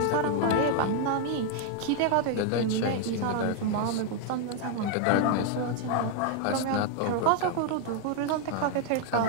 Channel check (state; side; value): different; both; correlation 0.00